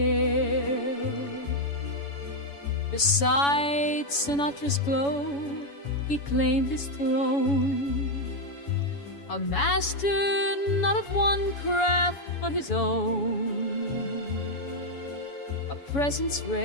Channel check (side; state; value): right; late; 7.1 ms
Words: air. Beside Sinatra's glow, he claimed his throne, a master not of one craft but his own, a presence